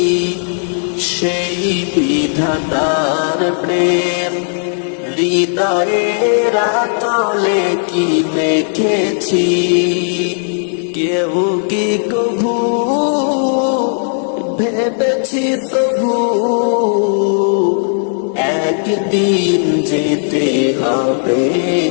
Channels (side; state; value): right; silent; digital silence